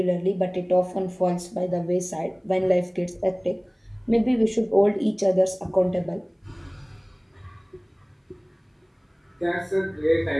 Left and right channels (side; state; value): both; identical; correlation 1.00